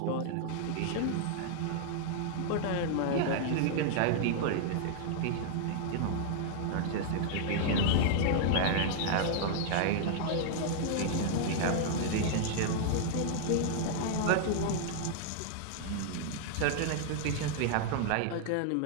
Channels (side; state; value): both; different; correlation -0.01